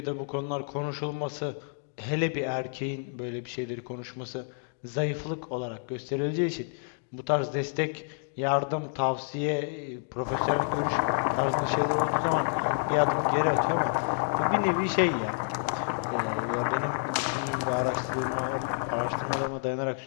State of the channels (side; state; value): right; silent; digital silence